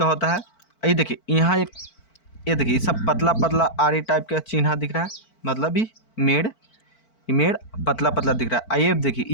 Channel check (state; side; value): late; right; 4.5 ms